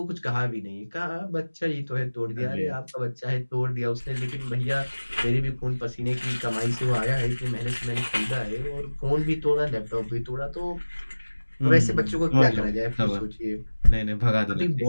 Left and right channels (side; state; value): both; inverted; correlation -1.00